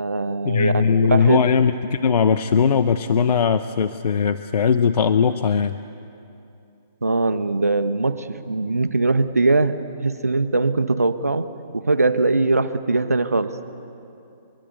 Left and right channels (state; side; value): inverted; both; correlation -0.69